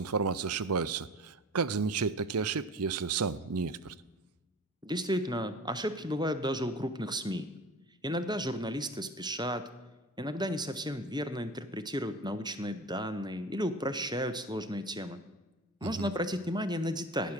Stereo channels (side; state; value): both; normal; correlation 0.37